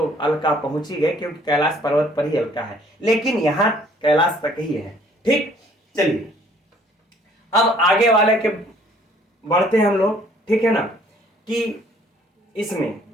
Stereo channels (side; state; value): both; normal; correlation 0.59